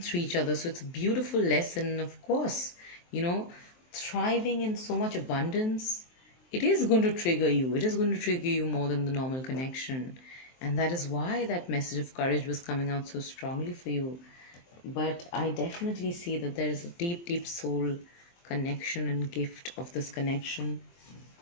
through each other. So it's a beautiful lesson. Of course, thriving in so much abundance, it is going to trigger you. It is going to trigger you more than the normal connection. And that is why that message of courage was coming out so strongly for you. But I definitely see that there is a deep, deep soul connection and gift of this connection.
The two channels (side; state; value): right; late; 23 ms